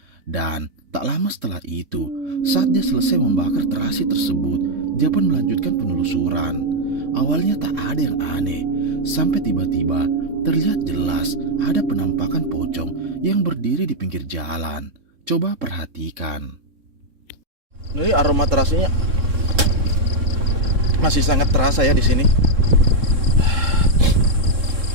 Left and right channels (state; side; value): late; left; 3.7 ms